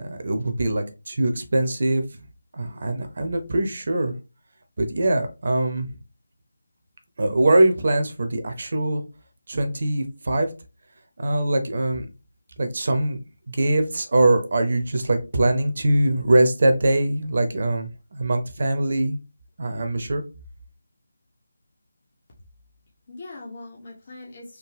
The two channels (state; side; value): inverted; both; correlation -0.94